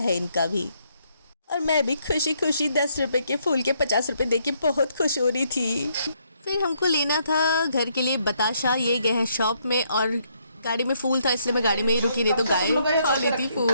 इनका भी। और मैं भी खुशी खुशी 10 रुपए के फूल के 50 रुपए दे के बहुत खुश हो रही थी। फिर हमको लेना था घर के लिए बताशा। ये गए हैं शॉप में, और गाड़ी में फूल था इसलिए मैं गाड़ी में ही रुकी, नहीं तो गाय खा लेती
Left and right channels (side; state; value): both; inverted; correlation -0.73